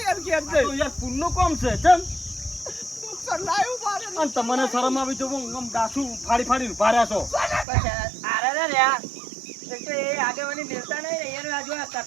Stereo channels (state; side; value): drops out; left; at 7.7 s